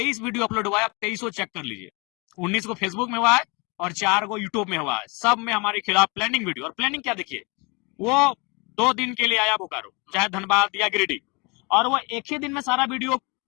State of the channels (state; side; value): quieter; right; 29.0 dB